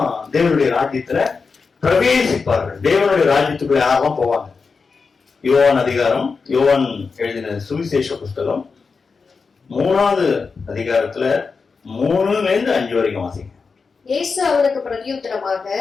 தேவனுடைய ராஜ்யத்துல பிரவேசிப்பார்கள்? தேவனுடைய ராஜ்யத்துக்குள்ள யாரெல்லாம் போவாங்க? யோவான் அதிகாரம், யோவான் எழுதின சுவிசேஷ புஸ்தகம் 3வது அதிகாரத்துல 3-5 வரைக்கும் வாசிங்க. இயேசு அவனுக்கு பிரதியுத்தரமாக,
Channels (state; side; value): quieter; right; 4.9 dB